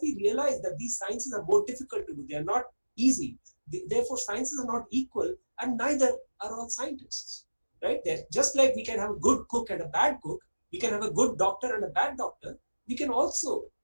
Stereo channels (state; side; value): inverted; both; correlation -1.00